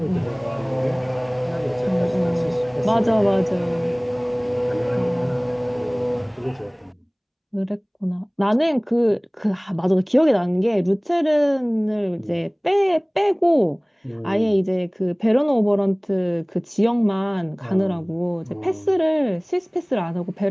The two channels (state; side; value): identical; both; correlation 1.00